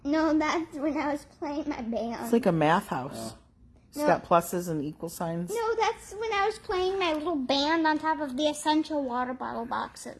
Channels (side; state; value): both; identical; correlation 1.00